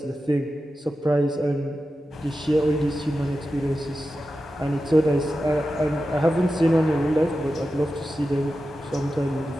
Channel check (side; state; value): both; normal; correlation 0.92